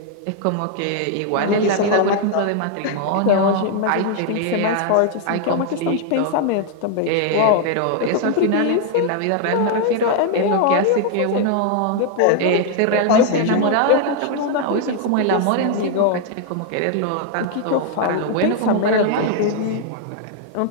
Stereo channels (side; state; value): both; different; correlation 0.00